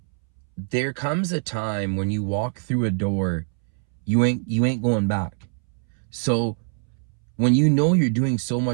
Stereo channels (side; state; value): left; silent; 63 dB below the other